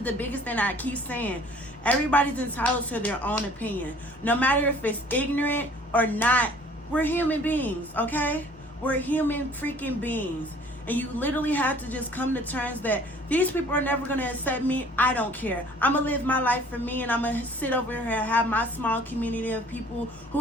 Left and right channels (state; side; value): normal; both; correlation 0.53